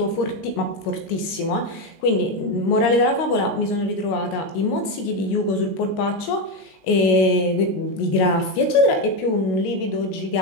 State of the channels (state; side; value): late; right; 19 ms